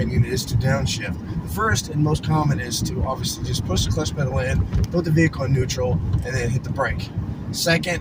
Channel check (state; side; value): identical; both; correlation 1.00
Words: is to downshift. The first and most common is to obviously just push the clutch pedal in, put the vehicle in neutral, and then hit the brake. Second,